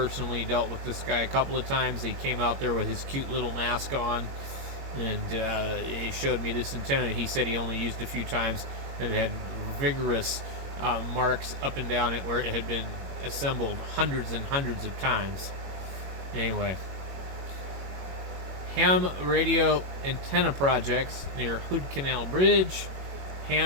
dealt with this guy a couple of times. He came out there with his cute little mask on, and he showed me this antenna. He said he only used a few times, and it had vigorous marks up and down it where it had been assembled hundreds and hundreds of times. Anyway, ham radio antenna projects near Hood Canal Bridge,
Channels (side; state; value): left; late; 21 ms